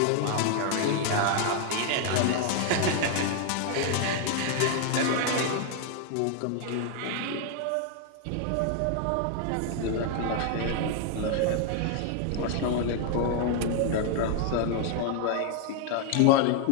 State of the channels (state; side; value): different; both; correlation 0.00